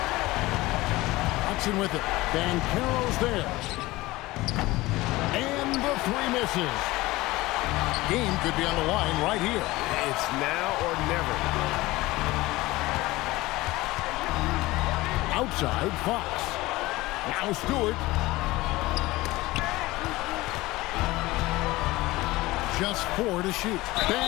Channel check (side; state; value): right; quieter; 19.5 dB